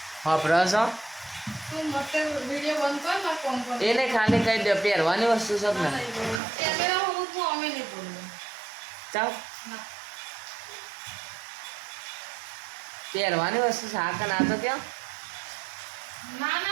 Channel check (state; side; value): drops out; left; at 6.4 s